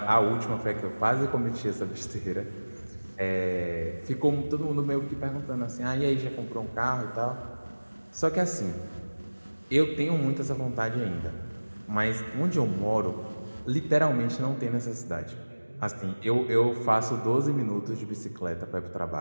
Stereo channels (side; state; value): both; inverted; correlation -1.00